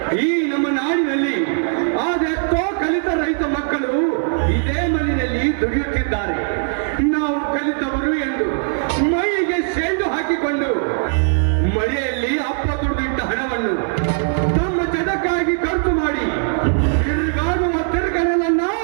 ಈ ನಮ್ಮ ನಾಡಿನಲ್ಲಿ ಅದೆಷ್ಟೋ ಕಲಿತ ರೈತ ಮಕ್ಕಳು ಇದೇ ಮಣ್ಣಿನಲ್ಲಿ ದುಡಿಯುತ್ತಿದ್ದಾರೆ. ನಾವು ಕಲಿತವರು ಎಂದು ಮೈಗೆ ಸೆಂಡು ಹಾಕಿಕೊಂಡು ಮಳೆಯಲ್ಲಿ ಅಪ್ಪ ದುಡಿದಿಟ್ಟ ಹಣವನ್ನು ತಮ್ಮ ಜಗಕ್ಕಾಗಿ ಖರ್ಚು ಮಾಡಿ ತಿರುಗಾಡುವ ತಿರುಗನಲ್ಲ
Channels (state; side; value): silent; left; 66 dB below the other